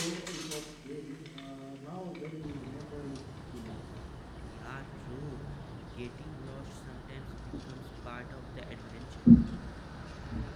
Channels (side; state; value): both; identical; correlation 1.00